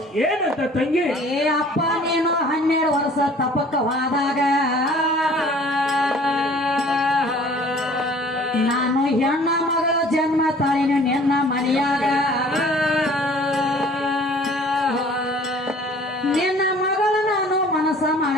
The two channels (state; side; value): normal; both; correlation 0.51